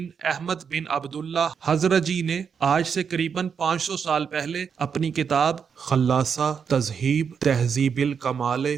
احمد بن عبداللہ حضرجی نے آج سے قریباً 500 سال پہلے اپنی کتاب خلاصہ تذہیب تہذیب الکمال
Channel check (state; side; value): quieter; left; 6.7 dB